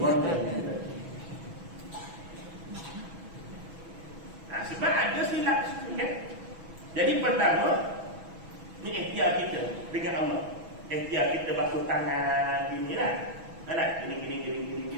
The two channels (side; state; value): left; late; 6.1 ms